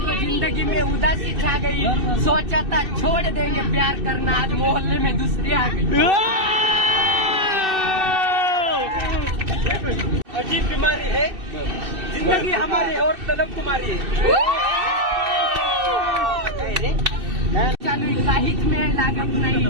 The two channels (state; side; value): late; left; 2.6 ms